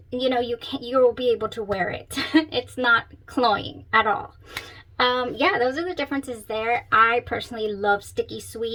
you know, you will be able to wear it. It's not cloying at all. Yeah, those are the differences there. I personally love sticky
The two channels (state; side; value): identical; both; correlation 1.00